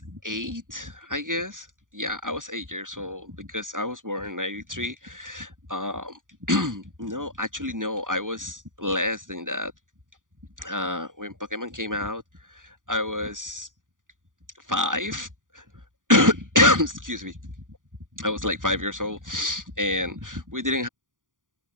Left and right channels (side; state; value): left; late; 0.88 ms